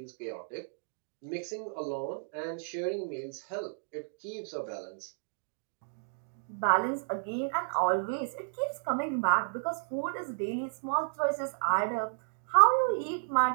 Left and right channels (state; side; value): silent; left; digital silence